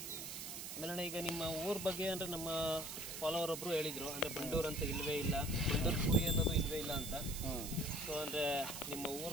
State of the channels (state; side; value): noise; right; hiss, 7 dB below the sound